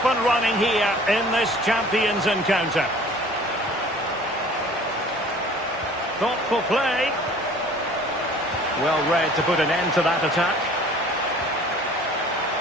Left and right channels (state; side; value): normal; both; correlation 0.49